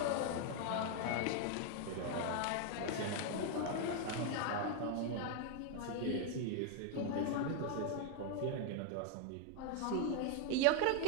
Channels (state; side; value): different; both; correlation 0.01